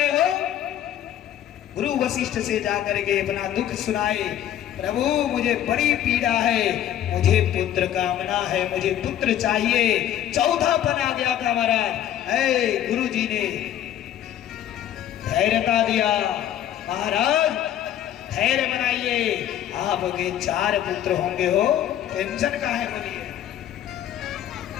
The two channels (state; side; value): quieter; right; 11.3 dB